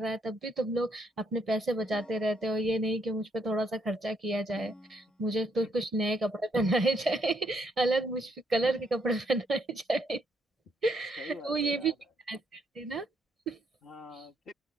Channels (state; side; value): normal; both; correlation 0.73